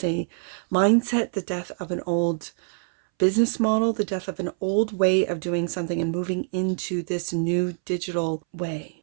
mindset, the death of an old business model, the death of an old way of doing something, and moving into this new digital way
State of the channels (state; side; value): silent; left; 62 dB below the other